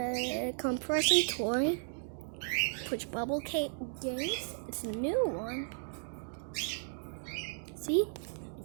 compression toy push bubble games. It's a new one. See, you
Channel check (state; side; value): silent; left; digital silence